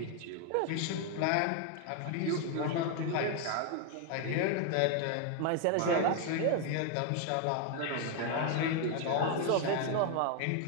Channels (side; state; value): both; different; correlation 0.01